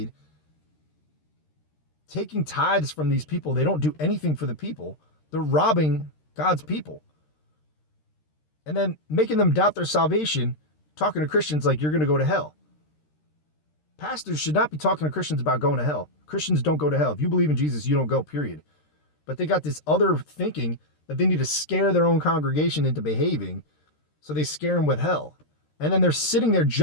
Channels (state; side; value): late; right; 13 ms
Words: taking tithes from these people. They don't do anything for the people. They're robbing God's people. And then making them doubt their salvation, talking to Christians like you're going to go to hell. Pastors should not be talking to Christians about going to hell. Christians don't go to hell. If you believe in Jesus, you don't go, period. But they got this other thinking that they need to scare their own congregation into behaving, so they scare them with hell. And then they're sitting there